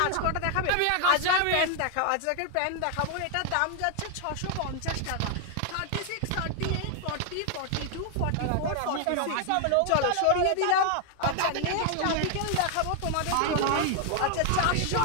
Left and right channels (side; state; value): both; different; correlation 0.00